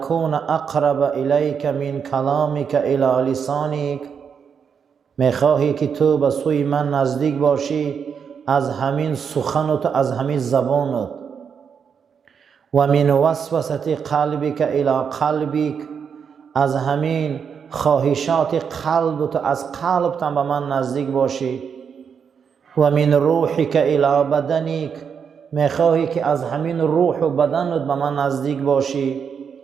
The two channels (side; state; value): left; quieter; 6.8 dB